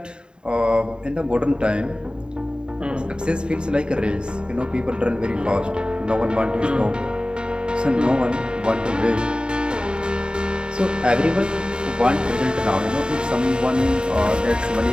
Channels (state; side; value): late; left; 0.049 ms